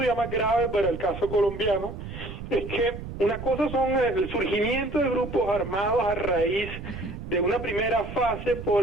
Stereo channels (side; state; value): right; noise; rumble, 10 dB below the sound